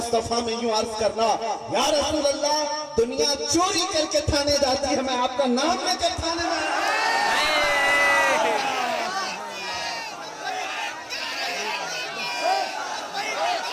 میں یوں عرض کرنا، یا رسول اللہ، دنیا چوری کر کے تھانے جاتی ہے، میں آپ کا نام لے کر تھانے میں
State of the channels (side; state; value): both; identical; correlation 1.00